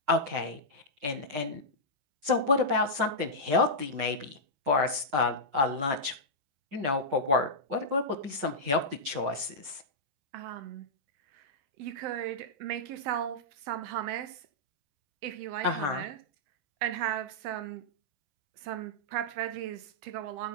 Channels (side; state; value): left; late; 7.1 ms